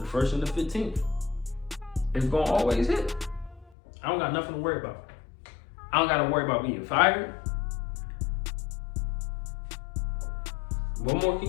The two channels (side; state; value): right; drops out; at 3.7 s